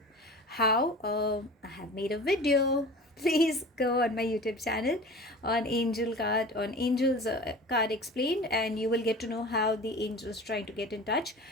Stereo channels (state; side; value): normal; both; correlation 0.38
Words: how, I have made a video. Please go on my YouTube channel on Angel's card explained, and you will get to know how the angels trying to get in touch.